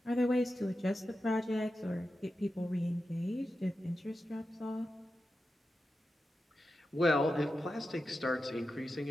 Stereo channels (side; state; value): both; normal; correlation 0.91